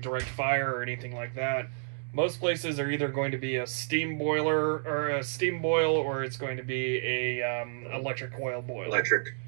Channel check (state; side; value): silent; left; digital silence